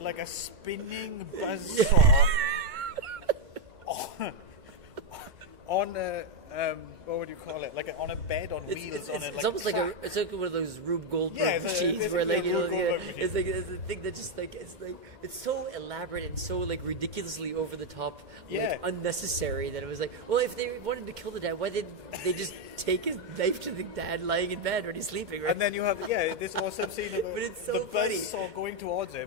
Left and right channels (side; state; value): left; late; 2.2 ms